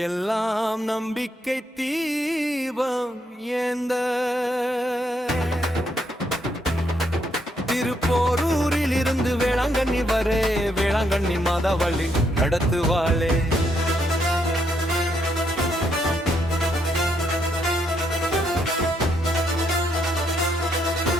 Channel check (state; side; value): normal; both; correlation 0.75